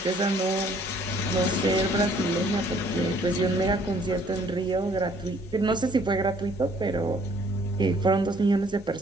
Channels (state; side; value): normal; both; correlation 0.61